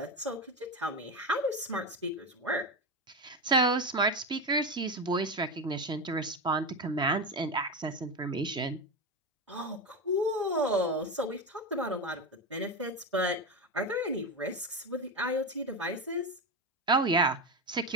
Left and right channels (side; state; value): both; normal; correlation 0.16